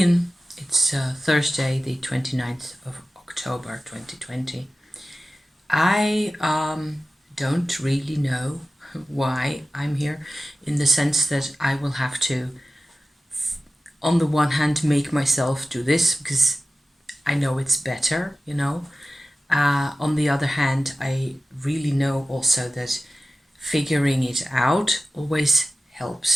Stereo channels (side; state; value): both; normal; correlation 0.95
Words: It's Thursday, the 29th of October 2020. I don't really know why I'm here, in the sense that I will have to, on the one hand, make myself do this because I know it's better. On the other hand, I really know also that figuring it out always